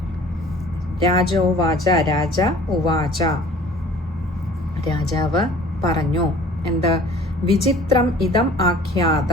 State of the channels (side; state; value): both; normal; correlation 0.50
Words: രാജോവാച, രാജ ഉവാച, രാജാവ് പറഞ്ഞു. എന്ത്? വിചിത്രം ഇതം